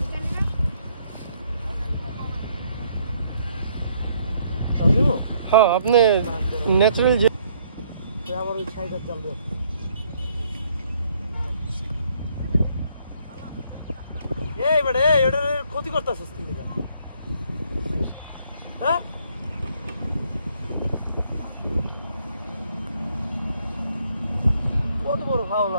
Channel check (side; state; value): both; inverted; correlation -0.67